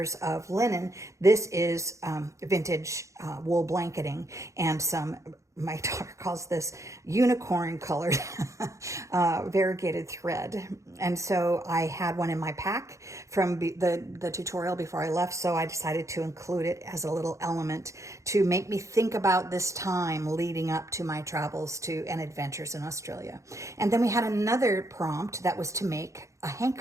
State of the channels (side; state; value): left; late; 0.15 ms